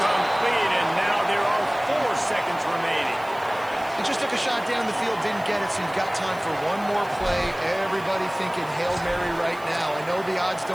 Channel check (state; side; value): noise; right; hiss, 23 dB below the sound